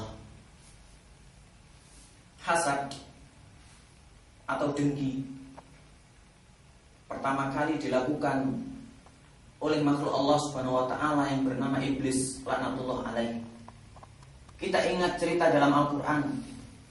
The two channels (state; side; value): identical; both; correlation 1.00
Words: hasad atau dengki pertama kali dilakukan oleh makhluk Allah Subhanahu wa taala yang bernama iblis laknatullah alaih. Kita ingat cerita dalam Al-Quran,